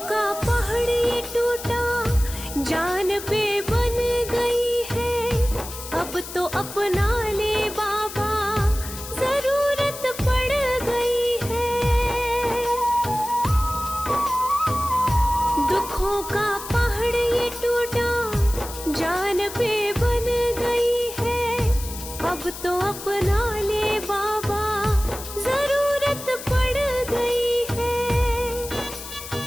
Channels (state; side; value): noise; left; hiss, 11 dB below the sound